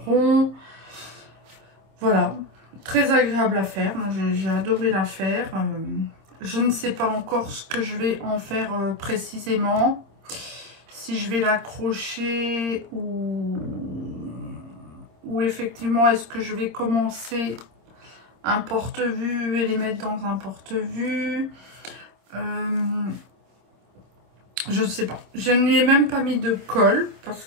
rond. Voilà, très agréable à faire. Moi j'ai adoré la faire. Je ne sais pas encore ce que je vais en faire précisément. Si je vais l'accrocher ou effectivement est-ce que je vais commencer un porte-vue et les mettre dans un porte-vue. Je ne sais pas. Je ne lui ai même pas mis de colle parce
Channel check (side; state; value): left; late; 26 ms